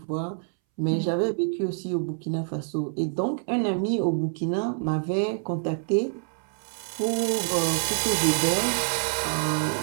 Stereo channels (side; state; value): left; silent; 61 dB below the other